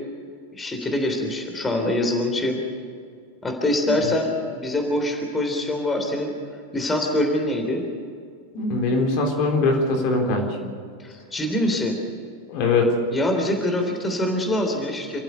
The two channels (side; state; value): both; normal; correlation 0.39